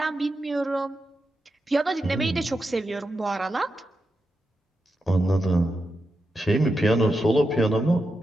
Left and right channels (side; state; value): both; normal; correlation 0.88